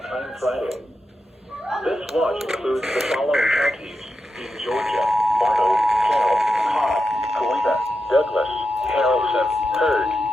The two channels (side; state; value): both; normal; correlation 0.88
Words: Time Friday. This watch includes the following counties in Georgia: Bartow, Carroll, Cobb, Columbia, Douglas, Harrelson, Heard,